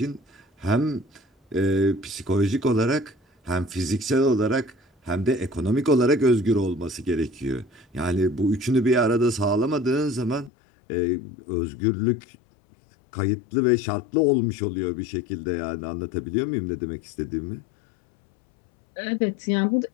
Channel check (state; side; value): drops out; right; at 10.5 s